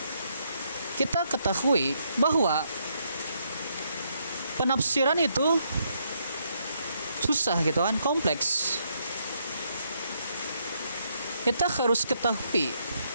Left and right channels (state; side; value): inverted; both; correlation -0.75